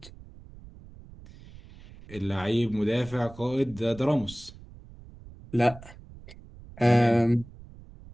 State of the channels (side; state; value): right; noise; rumble, 19 dB below the sound